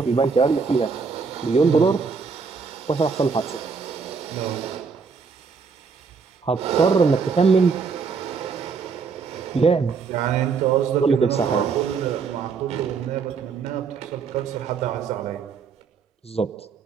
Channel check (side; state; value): left; quieter; 5.3 dB